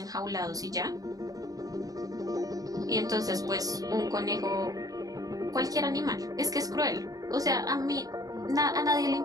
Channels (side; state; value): left; late; 0.18 ms